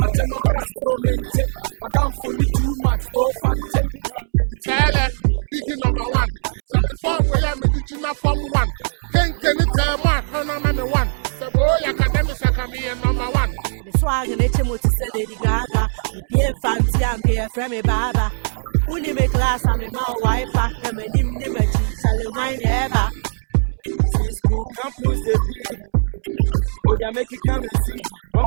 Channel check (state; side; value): silent; left; digital silence